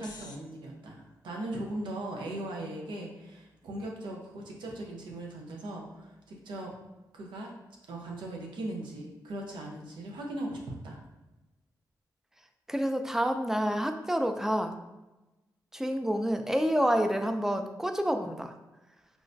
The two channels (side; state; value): both; normal; correlation 0.91